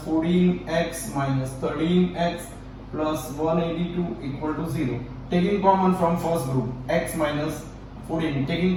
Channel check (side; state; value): both; identical; correlation 1.00